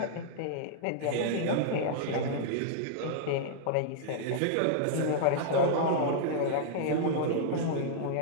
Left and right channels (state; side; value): different; both; correlation -0.01